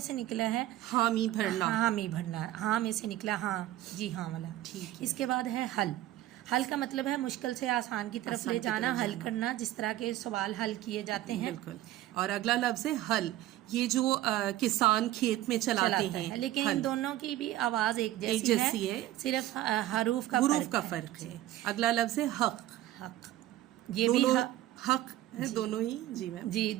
سے نکلا ہے، حامی بھرنا۔ حامی بھرنا، ہاں میں سے نکلا، ہاں جی ہاں والا۔ اس کے بعد ہے حل۔ حل کا مطلب ہے مشکل سے آسان کی طرف لے جانا، حل کرنا، جس طرح کے سوال حل کیے جاتے ہیں۔ بالکل۔ اور اگلا لفظ ہے حل، یہ جو کسان کھیت میں چلاتے ہیں، لیکن ان دونوں کی بھی آواز ایک جیسی ہے، صرف حروف کا فرق ہے۔ اگلا لفظ ہے حق۔ حق، یہ بھی حق ہے، دونوں ہی۔ جی میم۔ جی،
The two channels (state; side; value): quieter; left; 14.5 dB